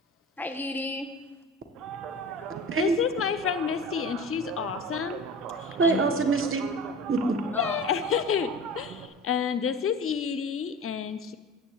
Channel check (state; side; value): normal; both; correlation 0.35